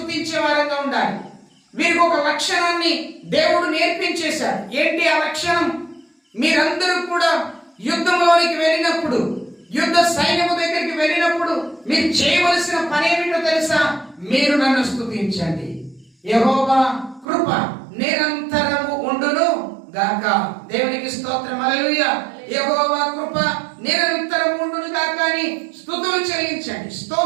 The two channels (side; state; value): left; drops out; at 17.2 s